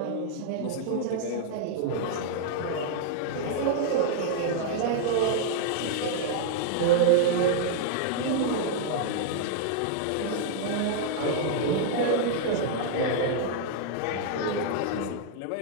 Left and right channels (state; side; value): different; both; correlation -0.01